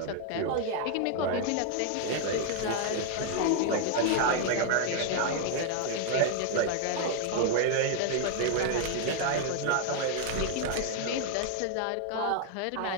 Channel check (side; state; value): both; different; correlation 0.00